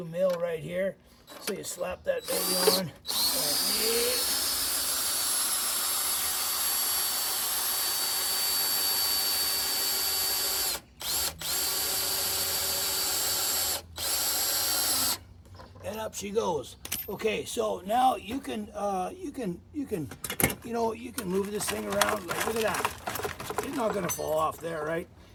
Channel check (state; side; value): identical; both; correlation 1.00